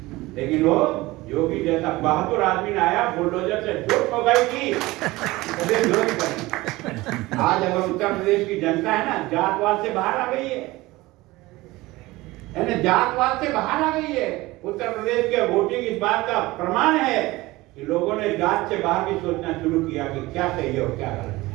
लेकिन वो योगी जैसा बहादुर आदमी ने आया, बुलडोजर से जोत पगाई की। आज अगर उत्तर प्रदेश की जनता है ना, जातवाद से बाहर आ गई है ना, जातवाद से बाहर आ गई है। उत्तर प्रदेश के वोटिंग इस बात का प्रमाण है कि लोगों ने जात से बाहर भी सोचना शुरू किया कि क्या सही है और क्या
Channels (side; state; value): left; quieter; 19.9 dB